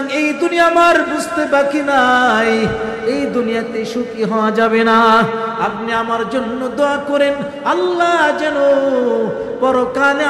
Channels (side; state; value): both; identical; correlation 1.00